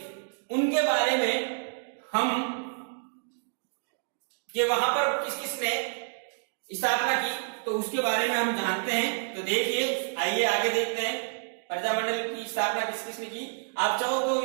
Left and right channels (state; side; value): silent; left; digital silence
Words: उनके बारे में हम कि वहां पर किस किस ने स्थापना की तो उसके बारे में हम जानते हैं। तो देखिए आइए आगे देखते हैं प्रजामंडल की स्थापना किस किस ने की। आप चाहो तो